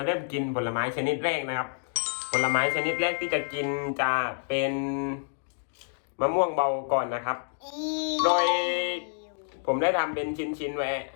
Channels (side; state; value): right; silent; digital silence